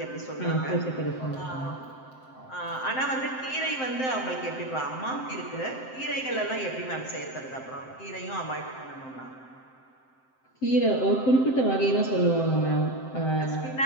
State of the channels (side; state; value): right; late; 7.7 ms